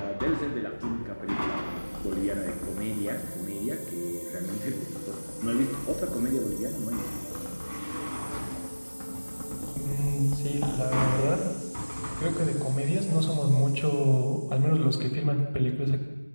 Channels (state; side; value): inverted; both; correlation -1.00